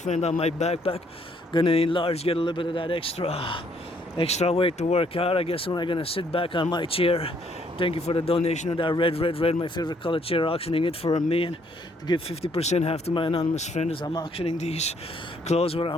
on my backpack. Gonna enlarge, get a little bit of that extra weight to work out. I guess when I'm gonna sit back on my chair. Thank you for the donation of that red, my favorite color chair, auctioning it for $1 million to give 50% half to my anonymous friend as I'm auctioning these clothes, what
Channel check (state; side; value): normal; both; correlation 0.67